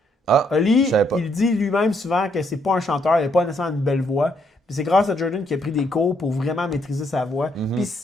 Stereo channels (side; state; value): both; normal; correlation 0.73